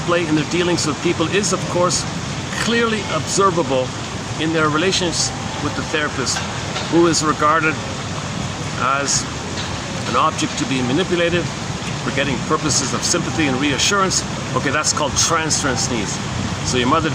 in their dealings with people is, of course, clearly observable in their relations with the therapist, who is regarded as an object to be manipulated for getting purposes of sympathy and reassurance. Okay, that's called transference needs. So your mother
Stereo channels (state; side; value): identical; both; correlation 1.00